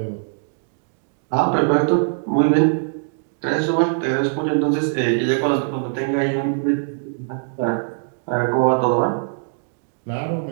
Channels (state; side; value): silent; left; digital silence